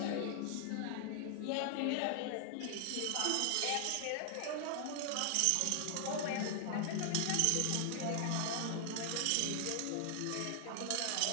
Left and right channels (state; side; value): different; both; correlation 0.00